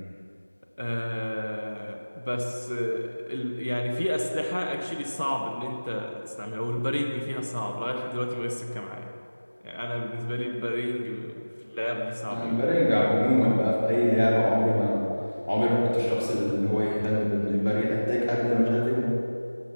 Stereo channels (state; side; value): inverted; both; correlation -1.00